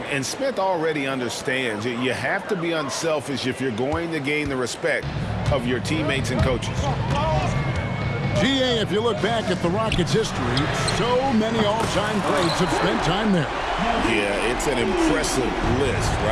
And Smith already understands you have to be unselfish if you're going to gain the respect of your teammates and coaches. GA, if you look back at the Rockets' history, so many all-time greats have spent time there. Yeah, it's an impressive list,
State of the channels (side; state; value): both; identical; correlation 1.00